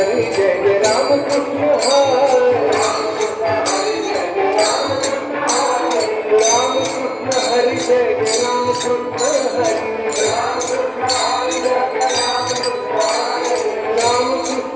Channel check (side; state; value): both; identical; correlation 1.00